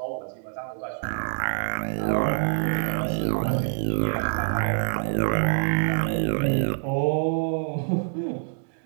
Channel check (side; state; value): left; silent; digital silence